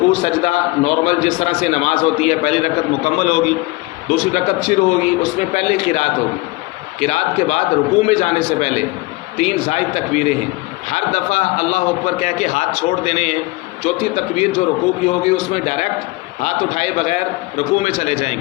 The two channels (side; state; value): right; quieter; 22.7 dB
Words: سجدہ نارمل جس طرح سے نماز ہوتی ہے، پہلی رکعت مکمل ہوگی، دوسری رکعت شروع ہوگی، اس میں پہلے قرات ہوگی. قرات کے بعد رکوع میں جانے سے پہلے 3 زائد تکبیریں ہیں، ہر دفعہ اللہ اکبر کہہ کے ہاتھ چھوڑ دینے ہیں. چوتھی تکبیر جو رکوع کی ہوگی اس میں ڈائریکٹ ہاتھ اٹھائے بغیر رکوع میں چلے جائیں